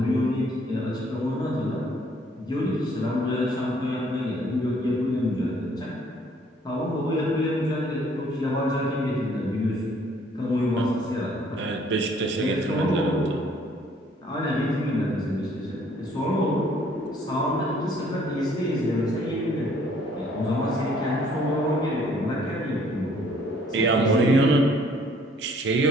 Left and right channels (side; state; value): both; normal; correlation 0.61